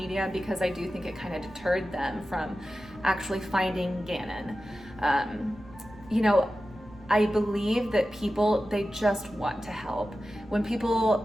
because I do think it kind of deterred them from actually finding Gannon. I believe that people, they just want to help. When people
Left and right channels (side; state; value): both; normal; correlation 0.94